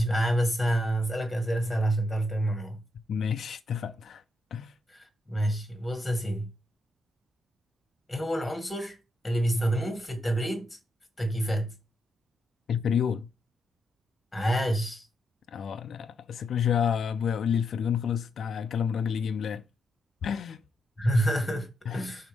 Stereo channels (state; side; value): normal; both; correlation 0.81